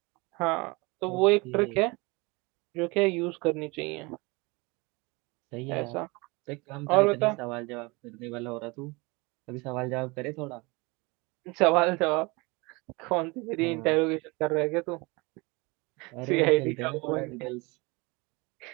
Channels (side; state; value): left; quieter; 25.9 dB